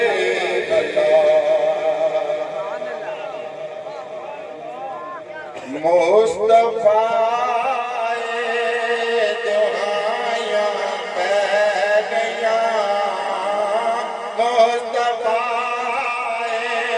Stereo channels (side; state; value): both; identical; correlation 1.00